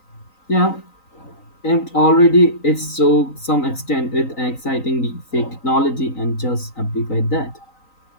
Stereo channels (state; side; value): late; right; 3.9 ms